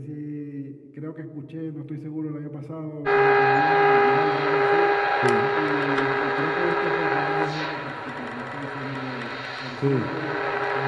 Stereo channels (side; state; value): both; identical; correlation 1.00